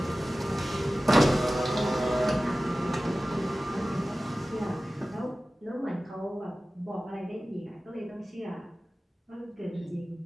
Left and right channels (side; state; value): both; normal; correlation 0.96